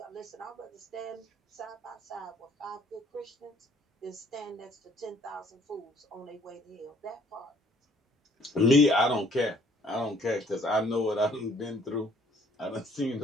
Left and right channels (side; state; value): both; normal; correlation 0.61